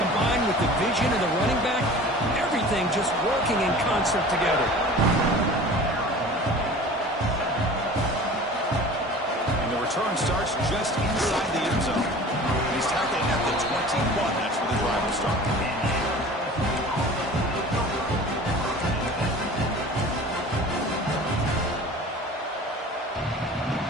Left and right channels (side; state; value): both; normal; correlation 0.41